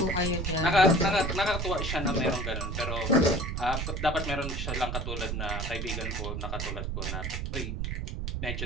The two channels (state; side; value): noise; right; rumble, 3 dB below the sound